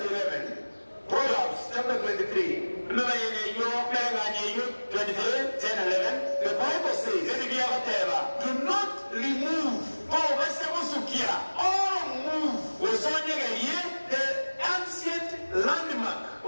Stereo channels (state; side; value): inverted; both; correlation -1.00